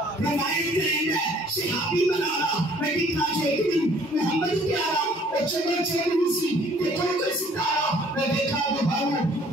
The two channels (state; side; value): normal; both; correlation 0.57